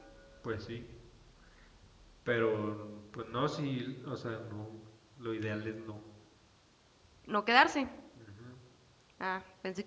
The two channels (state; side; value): identical; both; correlation 1.00